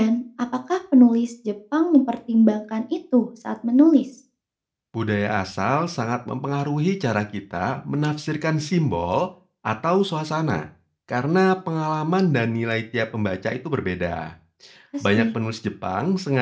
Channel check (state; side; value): identical; both; correlation 1.00